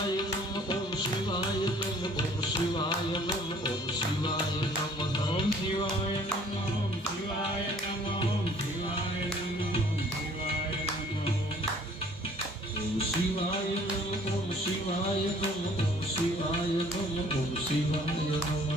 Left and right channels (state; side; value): normal; both; correlation 0.55